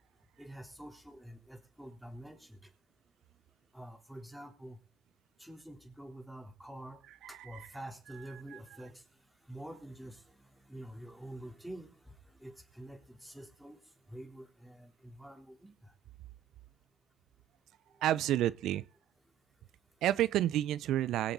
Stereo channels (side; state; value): left; quieter; 10.5 dB